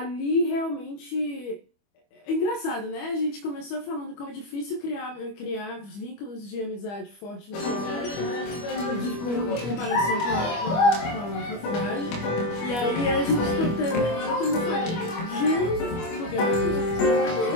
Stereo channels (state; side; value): late; right; 25 ms